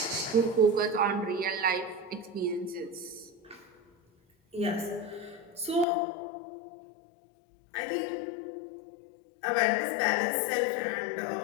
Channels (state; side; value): drops out; right; at 5.9 s